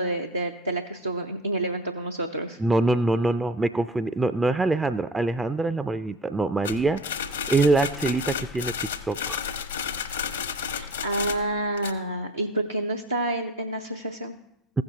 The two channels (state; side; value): normal; both; correlation 0.39